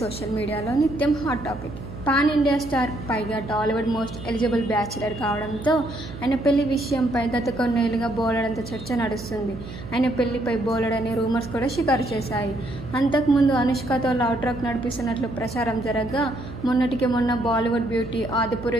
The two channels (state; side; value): noise; right; hum, 12 dB below the sound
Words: సోషల్ మీడియాలో నిత్యం hot topic. Pan India star, పైగా టాలీవుడ్ మోస్ట్ ఎలిజిబుల్ బ్యాచిలర్ కావడంతో ఆయన పెళ్లి విషయంపై గత కొన్నేళ్లుగా బోలెడంత చర్చ నడుస్తుంది. ఆయన పెళ్లిపై బోలెడనే రూమర్స్ కూడా షికారు చేశాయి. అంతకుముందు అనుష్కతో లవ్ ట్రాక్ నడిపిస్తున్నట్లు ప్రచారం జరగగా, మొన్నటికి మొన్న బాలీవుడ్ బ్యూటీ